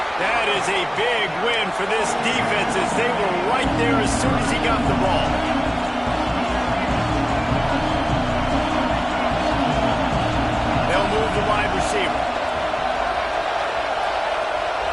That is a big win for this defense as they were right there as soon as he got the ball. They'll move the wide receiver.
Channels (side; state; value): both; identical; correlation 1.00